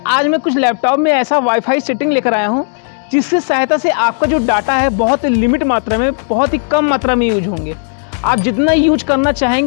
आज मैं कुछ लैपटॉप में ऐसा वाईफाई सेटिंग लेकर आया हूं, जिसकी सहायता से आपका जो डाटा है बहुत लिमिट मात्रा में, बहुत ही कम मात्रा में यूज होंगे। आप जितना यूज करना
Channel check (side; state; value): right; silent; digital silence